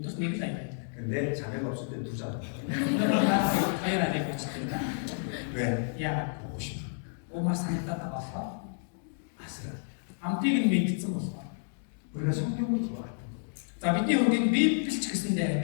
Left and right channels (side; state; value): right; silent; digital silence